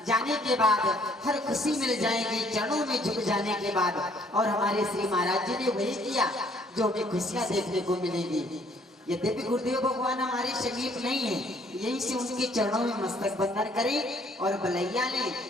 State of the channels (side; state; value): both; normal; correlation 0.63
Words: जाने के बाद, हर खुशी मिल जाएगी चरणों में झुक जाने के बाद। और हमारे श्री महाराज जी ने वही किया जो हमें खुशियां देखने को मिलेगी। यद्यपि गुरुदेव भगवान हमारे समीप नहीं है, यहीं से उनके चरणों में मस्तक बंधन करें और बलैया ने